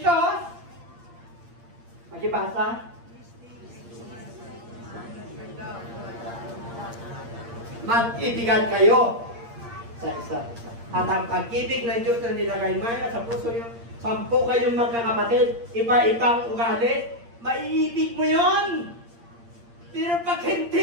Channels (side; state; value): left; late; 8.6 ms